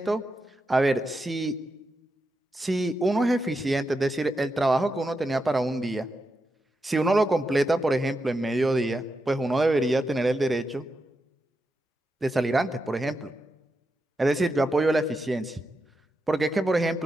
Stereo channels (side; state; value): both; normal; correlation 0.87